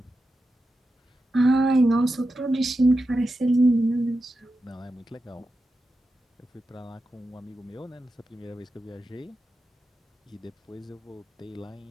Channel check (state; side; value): normal; both; correlation 0.90